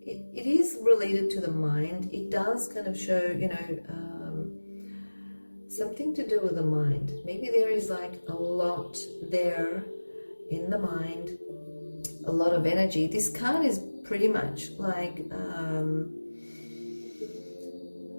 it is related to the mind. It does kind of show, you know, something to do with the mind. Maybe there is like a lot there in the mind, a lot of energy. This card is pretty much like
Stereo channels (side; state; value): both; inverted; correlation -1.00